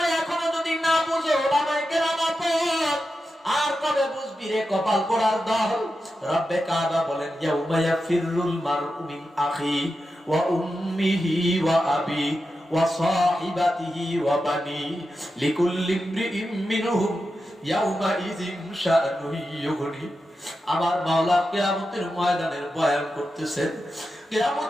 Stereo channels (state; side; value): normal; both; correlation 0.90